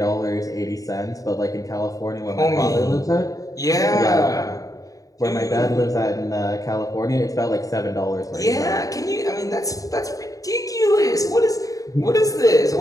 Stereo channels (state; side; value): late; right; 0.17 ms